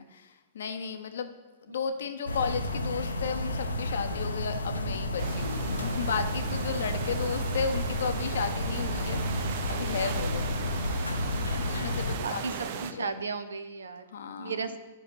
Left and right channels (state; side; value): inverted; both; correlation -0.61